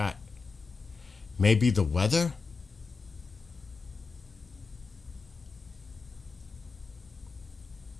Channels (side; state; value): right; quieter; 4.6 dB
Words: Maybe the weather?